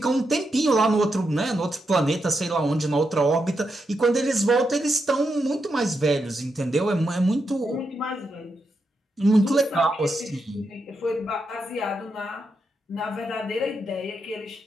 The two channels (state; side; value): normal; both; correlation 0.84